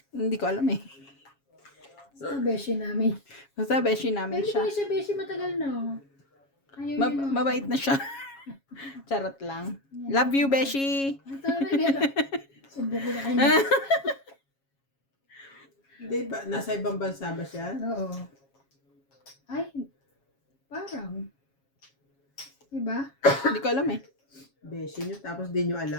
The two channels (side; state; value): right; late; 7.3 ms